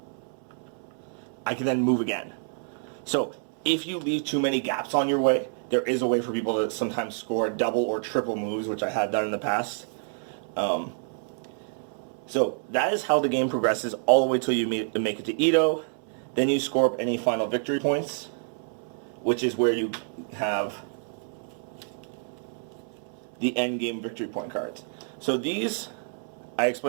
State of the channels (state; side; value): silent; left; 59 dB below the other